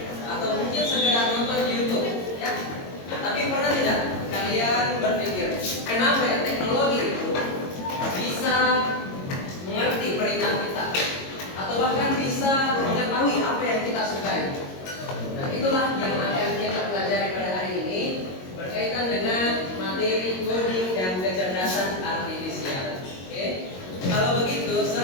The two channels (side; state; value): right; late; 22 ms